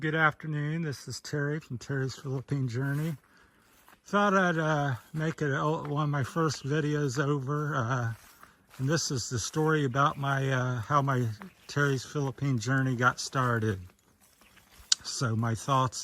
afternoon. This is Terry from Terry's Philippine Journey. Thought I'd make it one of my first videos over, and this is the story about my how my Terry's Philippine Journey got started. So my thoughts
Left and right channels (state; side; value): identical; both; correlation 1.00